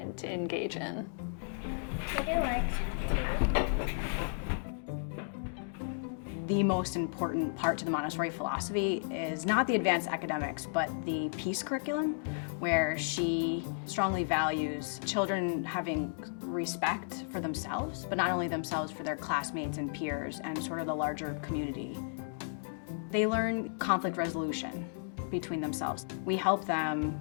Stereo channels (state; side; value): silent; right; digital silence